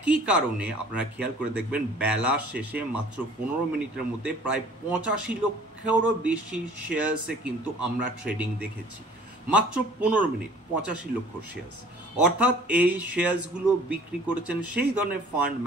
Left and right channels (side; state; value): both; normal; correlation 0.51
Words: কারণে আপনারা খেয়াল করে দেখবেন বেলা শেষে মাত্র 15 মিনিটের মধ্যে প্রায় 85 লক্ষেরও বেশি শেয়ার্সে কিন্তু আমরা ট্রেডিং দেখেছি। মাত্র 15 মিনিট 85 লক্ষ শেয়ার্স, অর্থাৎ এই শেয়ার্সগুলো বিক্রি করেছেন সেই ধরনের ফান্ড